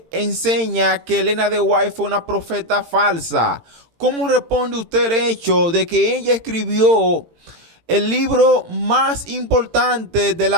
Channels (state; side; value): late; left; 18 ms